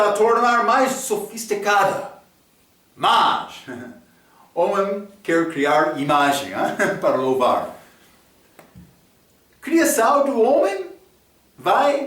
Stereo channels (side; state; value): both; identical; correlation 1.00